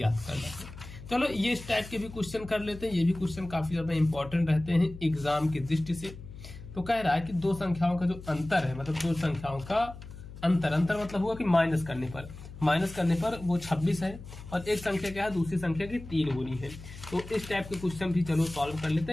करना है। चलो ये इस टाइप के भी क्वेश्चन कर लेते हैं, ये भी क्वेश्चन काफी ज्यादा इंपॉर्टेंट रहते हैं एग्जाम की दृष्टि से। तो कह रहा है कि दो संख्याओं का जो अंतर है, मतलब दो संख्याओं का अंतर मतलब हुआ कि माइनस करने पर वो 26 है, और एक संख्या क्या है, दूसरी संख्या की 3 गुनी है। तो इस टाइप के क्वेश्चन भी चलो सॉल्व कर लेते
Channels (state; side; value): noise; left; hum, 14 dB below the sound